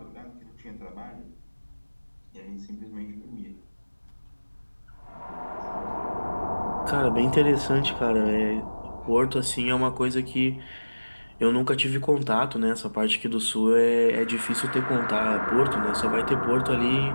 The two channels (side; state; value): both; inverted; correlation -1.00